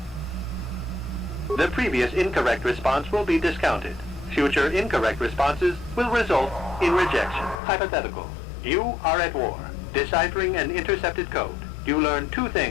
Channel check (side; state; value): right; drops out; at 7.6 s